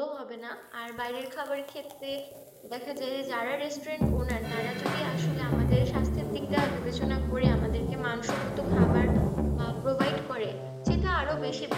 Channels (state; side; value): identical; both; correlation 1.00